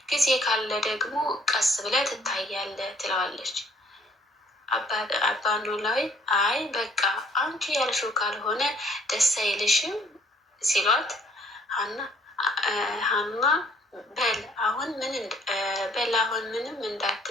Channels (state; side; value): normal; both; correlation 0.61